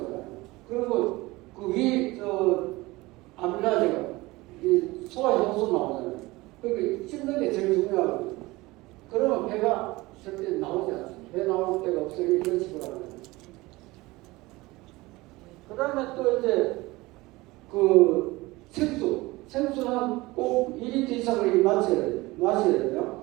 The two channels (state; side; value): quieter; left; 21.0 dB